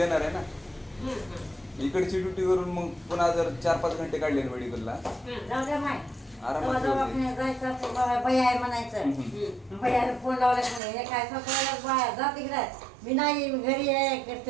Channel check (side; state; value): left; drops out; at 10.8 s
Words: आहे ना. इकडची ड्युटी करून मग पुन्हा जर 4-5 घंटे काढले ना मेडिकलला जाऊ द्या माय आरामात दवाखान्यात जायचं असं बाया आहे म्हणायचं. बायाला फोन लावला की नाही, हे काय सकाळला बाया जा तिकडे, मी नाही घरी आहे